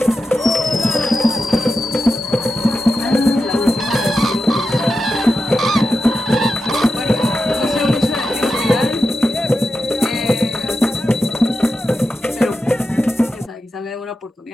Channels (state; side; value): normal; both; correlation 0.90